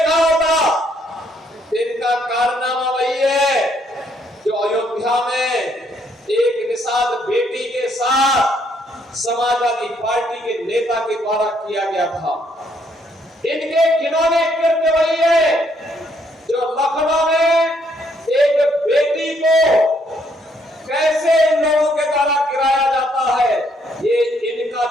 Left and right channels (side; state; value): both; normal; correlation 0.70